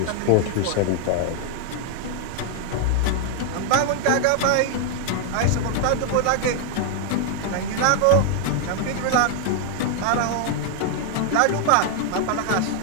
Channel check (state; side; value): different; both; correlation 0.00